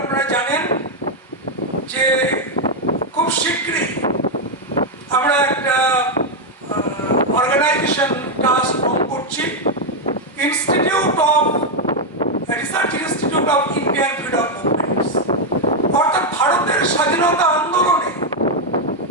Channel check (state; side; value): normal; both; correlation 0.02